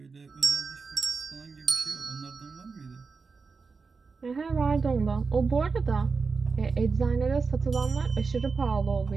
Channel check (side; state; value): left; quieter; 4.7 dB